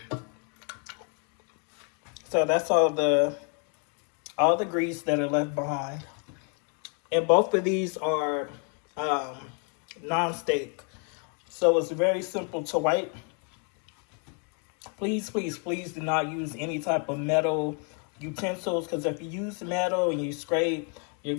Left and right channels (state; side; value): quieter; right; 39.9 dB